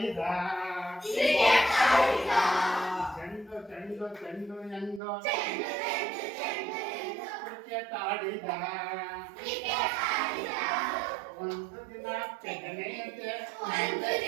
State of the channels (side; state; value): left; drops out; at 5.0 s